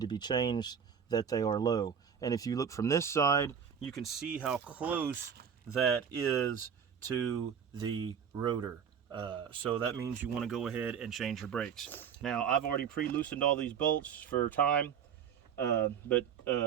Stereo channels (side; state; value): left; quieter; 7.6 dB